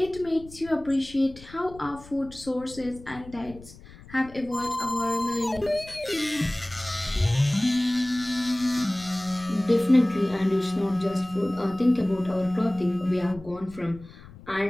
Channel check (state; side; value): noise; left; rumble, 19 dB below the sound